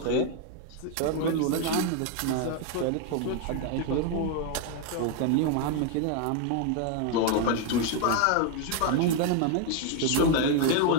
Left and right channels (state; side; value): different; both; correlation 0.01